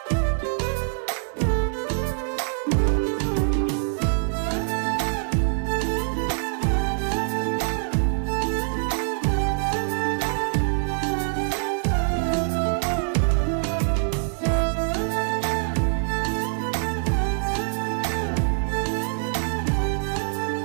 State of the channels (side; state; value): left; silent; digital silence